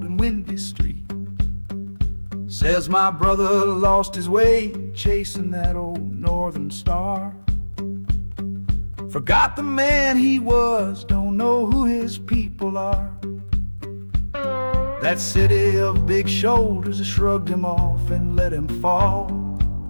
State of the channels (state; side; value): inverted; both; correlation -1.00